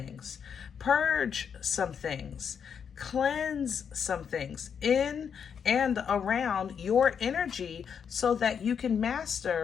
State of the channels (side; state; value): right; quieter; 7.2 dB